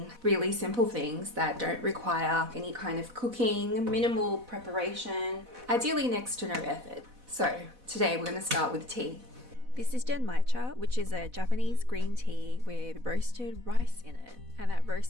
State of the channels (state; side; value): late; left; 4.1 ms